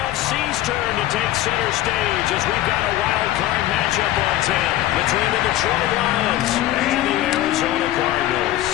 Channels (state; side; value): quieter; right; 14.4 dB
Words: turn to take center stage as we've got a wild card matchup on 10 between the Detroit Lions and the Arizona Cardinals.